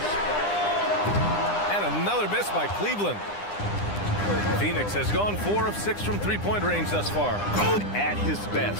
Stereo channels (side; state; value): right; late; 9.9 ms